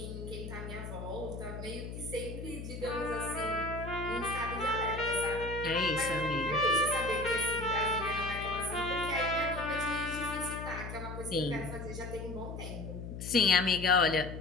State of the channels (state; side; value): noise; left; hum, 8 dB below the sound